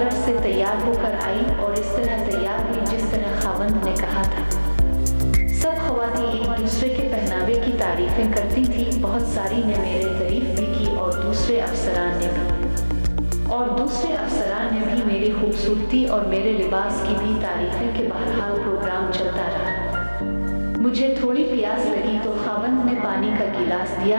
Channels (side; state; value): both; inverted; correlation -1.00